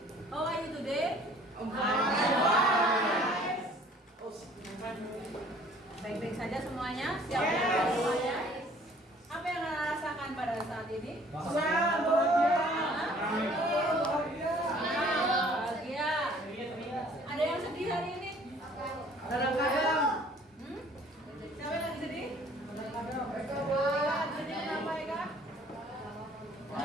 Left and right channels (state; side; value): normal; both; correlation 0.55